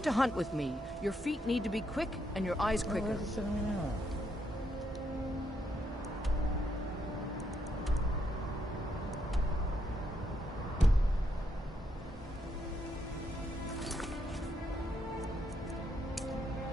to hunt with me, your feet need to be quick and your eyes quicker. Where's it sending me now?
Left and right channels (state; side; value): normal; both; correlation 0.77